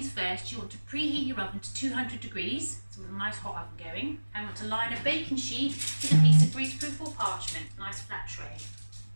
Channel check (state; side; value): inverted; both; correlation -1.00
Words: first, you want to preheat your oven to 200 degrees, so with a nice hot oven going, and want to line a baking sheet with a piece of greaseproof or parchment, nice flat tray.